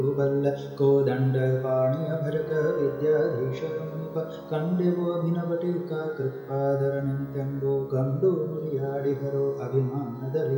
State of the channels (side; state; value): both; identical; correlation 1.00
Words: ಬಲ್ಲ ಕೋದಂಡ ಪಾಣಿಯ ಭಜಕ ವಿದ್ಯಾಧೀಶರ ಮುನಿಪ ಕಂಡೆವೋ ಅಭಿನವ ಟೀಕಾ ಕೃತ್ಪಾದರನೆಂತೆಂಬೋ ಕಂಡು ನುಡಿಯಾಡಿಹರೋ